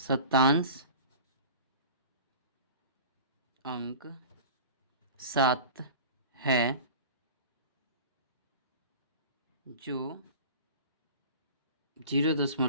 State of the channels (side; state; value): both; inverted; correlation -0.38